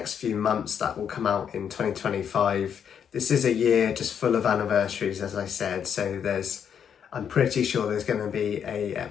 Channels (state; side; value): quieter; right; 8.0 dB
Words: few months that will come out in 2025. This is a year just full of anniversaries, as I said, so I'm pretty sure there's going to be a